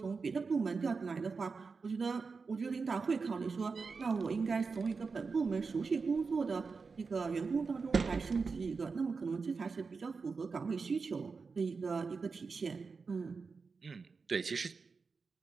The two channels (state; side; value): quieter; left; 4.8 dB